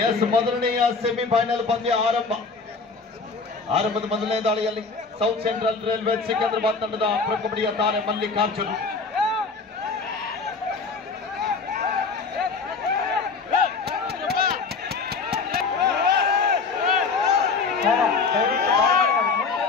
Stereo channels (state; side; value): quieter; right; 4.5 dB